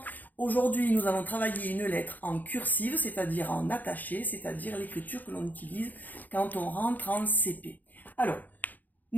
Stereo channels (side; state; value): right; late; 0.083 ms